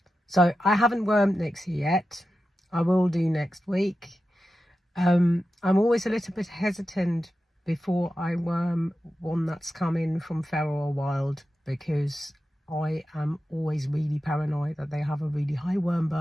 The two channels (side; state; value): both; normal; correlation 0.92